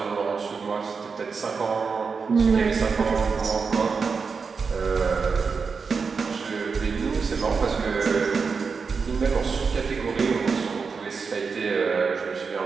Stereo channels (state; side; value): quieter; left; 5.2 dB